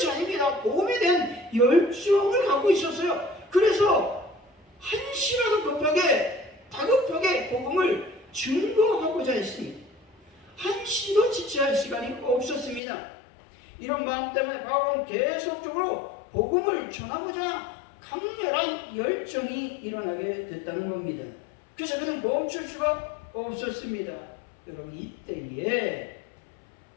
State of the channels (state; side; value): drops out; right; at 12.8 s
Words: 아닙니다. 복음에 대한 열정을 갖고 있었어요. 그래서 한시라도 다급하게 복음을 증거하고자 했습니다. 한시도 지체할 시간이 없었습니다. 이런 마음 때문에 바울은 계속적으로 복음을 전하고자 강렬한 열정이 일어나게 됐다는 겁니다. 그래서 그는 멈출 수가 없었습니다. 여러분 이때에